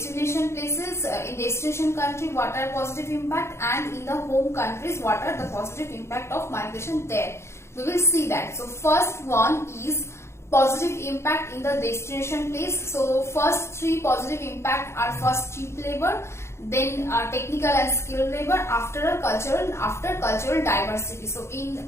places, in destination country, what are positive impact, and in the home countries, what are the positive impact of migration there. We will see that. So first one is positive impact in the destination place. So first three positive impact are first cheap labor, then technical and skilled labor, after cultural diversity. So in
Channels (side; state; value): right; late; 0.13 ms